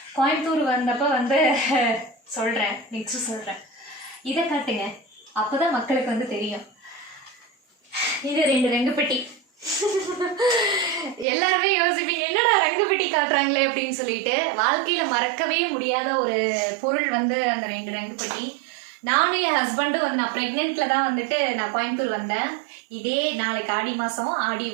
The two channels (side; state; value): left; drops out; at 11.2 s